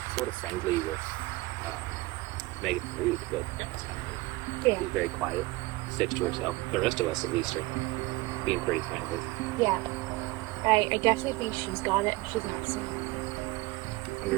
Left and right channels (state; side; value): quieter; left; 21.4 dB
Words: sort of friendly with Megan Reed, but that's kind of it. Yeah. She's very quiet, sticks to herself. The rest of us, at least, are being pretty friendly. Yeah. I definitely think she's got it. She's not saying anything. I wonder